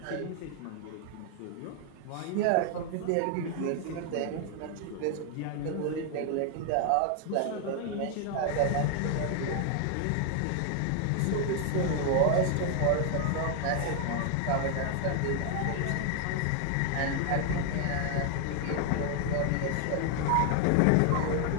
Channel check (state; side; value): different; both; correlation 0.00